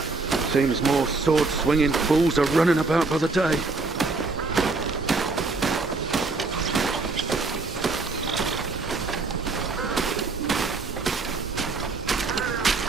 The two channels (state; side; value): quieter; left; 3.8 dB